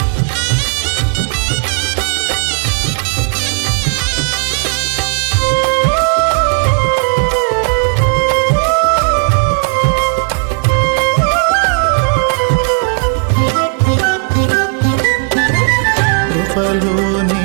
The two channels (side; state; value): left; quieter; 39.2 dB